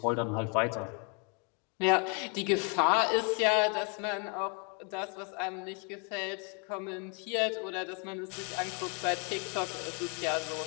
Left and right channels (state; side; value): quieter; right; 34.5 dB